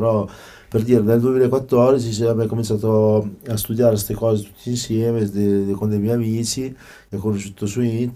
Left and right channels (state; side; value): identical; both; correlation 1.00